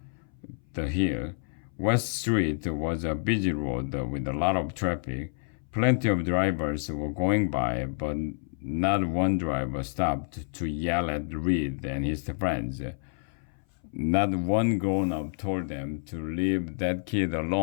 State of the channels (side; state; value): right; silent; 57 dB below the other